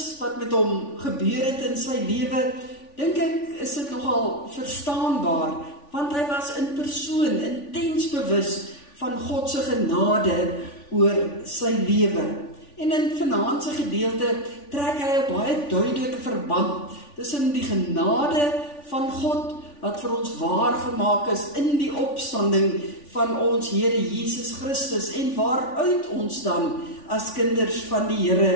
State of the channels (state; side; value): late; right; 3.5 ms